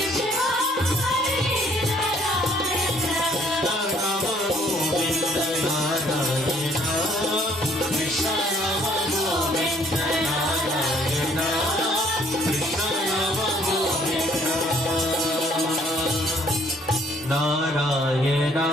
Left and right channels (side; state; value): both; normal; correlation 0.62